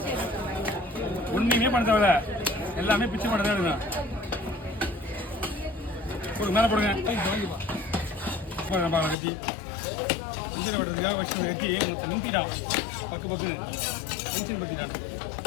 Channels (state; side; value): drops out; right; at 9.2 s